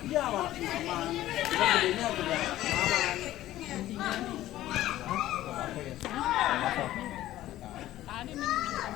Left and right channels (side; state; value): right; quieter; 14.5 dB